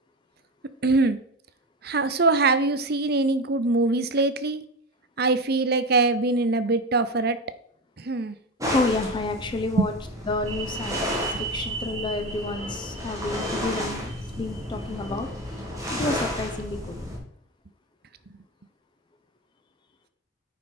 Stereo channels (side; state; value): both; normal; correlation 0.21